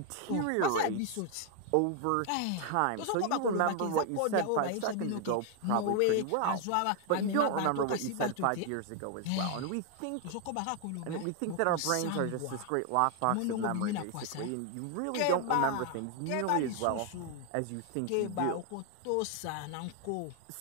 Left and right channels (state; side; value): different; both; correlation 0.00